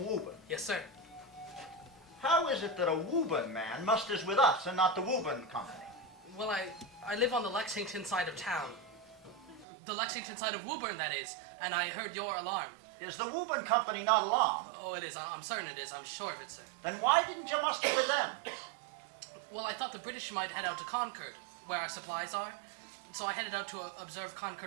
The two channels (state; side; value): drops out; left; at 9.7 s